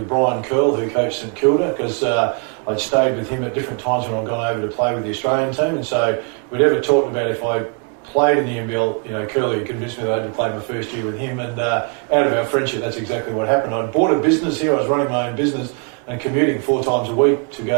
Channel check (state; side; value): quieter; left; 38.7 dB